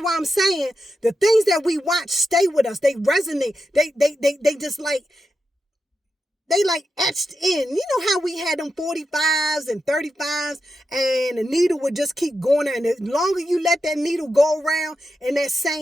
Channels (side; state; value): both; normal; correlation 0.88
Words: why I'm saying the things that we watch stay with us. They resonate. They just like, they like etched in. You know how we had them 45s and 35s and the needle would just keep going. And the longer you let that needle go around in that